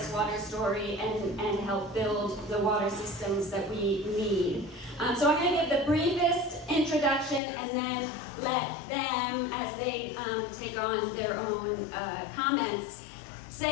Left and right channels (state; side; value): drops out; right; at 7.4 s